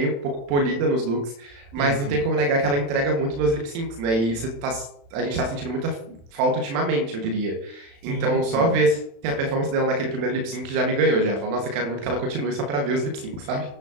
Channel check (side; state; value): left; late; 35 ms